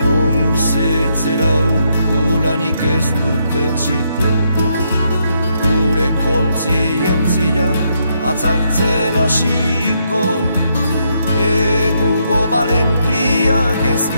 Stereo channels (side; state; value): both; inverted; correlation -0.77